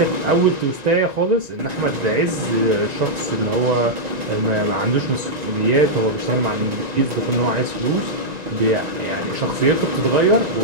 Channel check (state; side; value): late; left; 1.9 ms